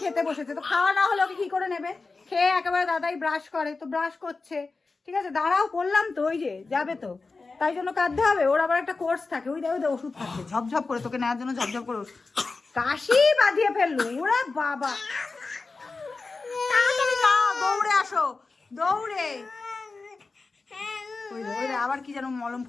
খেতে বসেছে, তো খাওয়া না হলে ওকে কি করে নেবে, খেয়ে একেবারে দাদাই ব্রাশ করে, তো ব্রাশ করছে, ঠিক আছে দাঁড়াও করলাম তো, ওই যে যাবে তো, তাই জন্য কাঁদতে হবে, ওর আবার একটা কোর্স থাকে, ওই দেখো ওষুধ খাচ্ছে ঝপঝপ করে, তোকে নেওয়ার জন্য ঝপঝপ করে কাশি বাঁধিয়ে ফেললো, ওরা বাবা তাড়াতাড়ি নাও, দৌড়ে আসো দৌড়ে, ওই রে আবার কি যেন মলম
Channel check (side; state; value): right; quieter; 4.0 dB